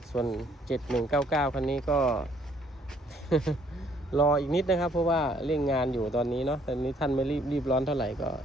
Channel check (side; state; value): both; normal; correlation 0.64